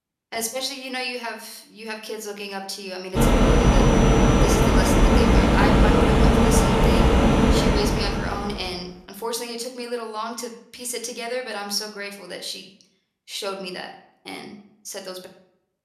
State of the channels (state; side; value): identical; both; correlation 1.00